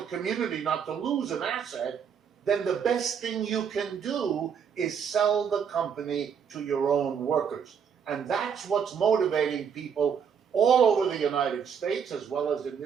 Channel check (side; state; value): left; quieter; 7.2 dB